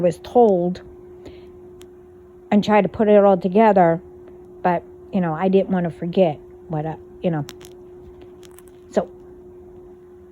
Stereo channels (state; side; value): identical; both; correlation 1.00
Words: was told, and try to put it all together, but, you know, I didn't want to forget what, you know. So